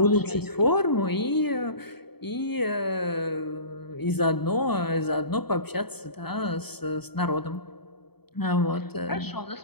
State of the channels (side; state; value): right; late; 0.97 ms